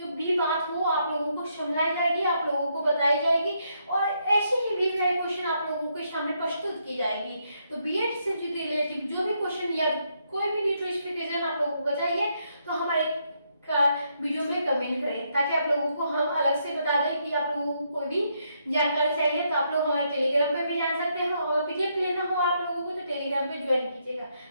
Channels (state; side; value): inverted; both; correlation -0.76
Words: भी बात हो आप लोगों को समझाई जाएगी, आप लोगों को बताई जाएगी और ऐसे ही भी क्वेश्चन आप लोगों के सामने प्रस्तुत की जाएगी। तो बीएड से रिलेटेड जो भी क्वेश्चन या कोई भी नोटिफिकेशन आप लोगों को चाहिए, तो हमारे वीडियो में कमेंट करें, ताकि आप लोगों को हम अलग से बता दें कि आप लोगों को कोई भी जानकारी चाहिए तो आप लोग हमारे टेलीग्राम पे भी जान सकते हैं और पीडीएफ लेना हो आप लोगों को तो टेलीग्राम पे ज्वाइन कीजिएगा।